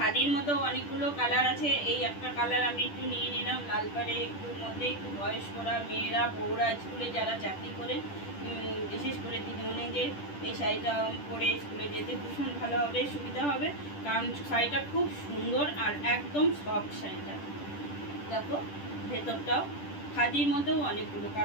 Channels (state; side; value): late; right; 10 ms